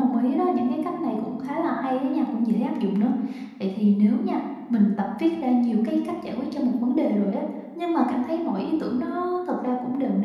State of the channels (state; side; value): identical; both; correlation 1.00